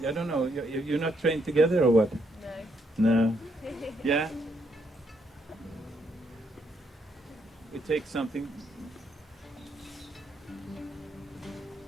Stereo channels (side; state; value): both; normal; correlation 0.75